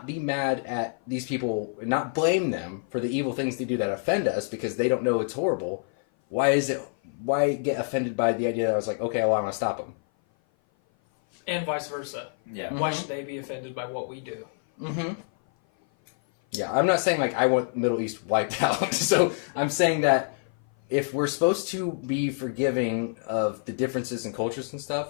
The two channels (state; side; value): silent; right; 56 dB below the other